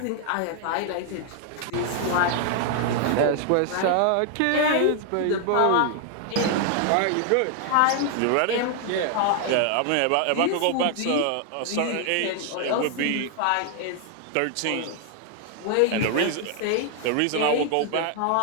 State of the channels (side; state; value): both; different; correlation 0.00